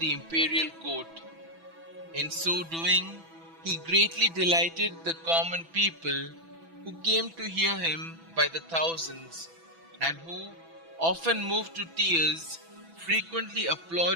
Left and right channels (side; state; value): left; late; 6.0 ms